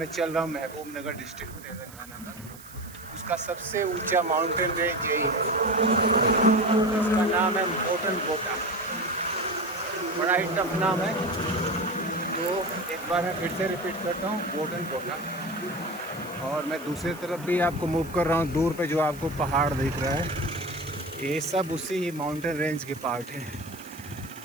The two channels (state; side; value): noise; right; hiss, 19 dB below the sound